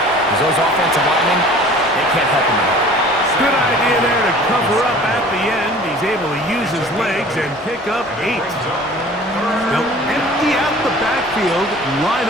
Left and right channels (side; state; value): both; normal; correlation 0.47